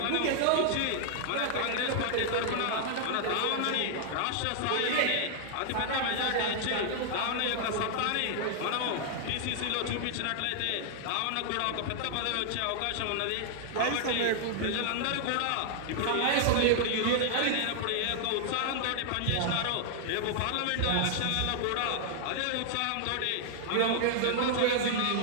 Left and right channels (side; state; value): both; different; correlation 0.00